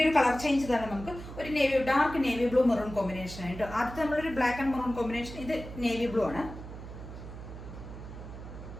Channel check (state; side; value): noise; right; hum, 12 dB below the sound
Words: ഒരു കളർ ചേഞ്ച് തന്നെ. നമുക്ക് ഒരു dark navy blue maroon combination ആയിട്ട്. ആദ്യത്തെ നമ്മളൊരു ബ്ലാക്ക് ആൻഡ് മെറൂൺ കോമ്പിനേഷൻ, ഇത് നേവി ബ്ലൂ ആണ്.